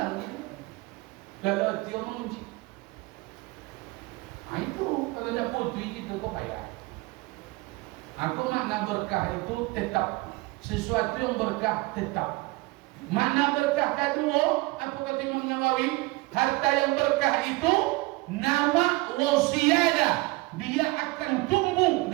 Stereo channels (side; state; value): left; quieter; 22.8 dB